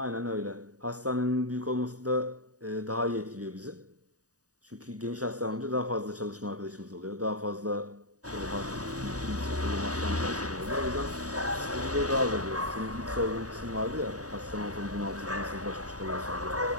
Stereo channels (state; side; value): late; left; 0.67 ms